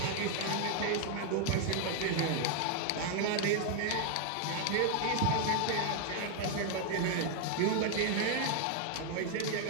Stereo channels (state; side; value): different; both; correlation 0.00